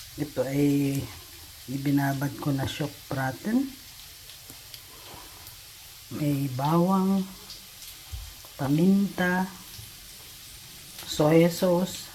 Ito ay ibinabad ko na shock braten. May bawang, paminta, soy sauce,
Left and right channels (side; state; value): both; identical; correlation 1.00